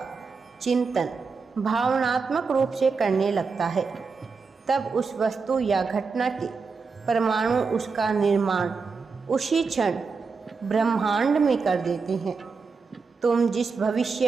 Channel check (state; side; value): quieter; left; 4.8 dB